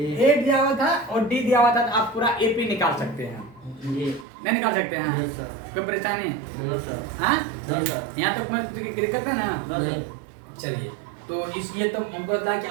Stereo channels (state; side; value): drops out; left; at 4.2 s